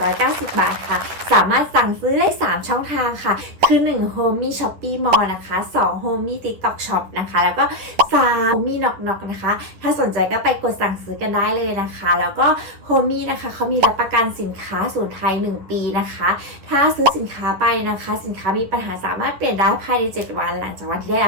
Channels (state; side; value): late; left; 10 ms